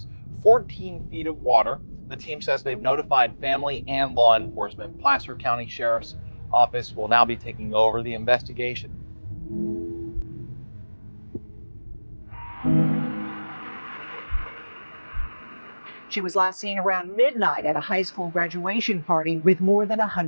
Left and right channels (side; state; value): both; inverted; correlation -1.00